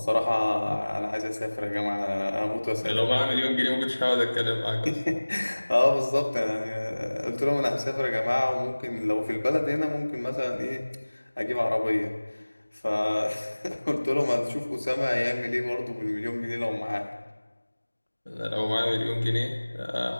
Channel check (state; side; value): inverted; both; correlation -1.00